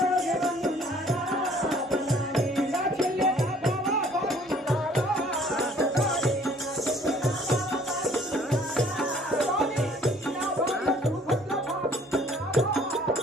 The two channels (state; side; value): normal; both; correlation 0.56